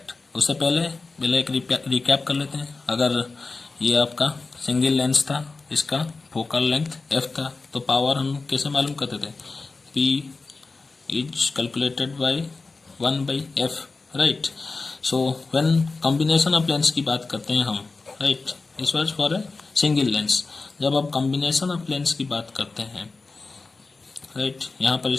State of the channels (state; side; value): quieter; right; 3.9 dB